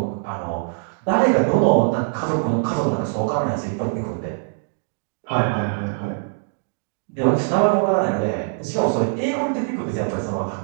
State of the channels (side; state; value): left; silent; digital silence